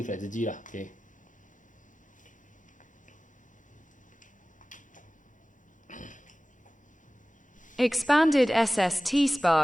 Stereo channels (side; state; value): both; normal; correlation 0.97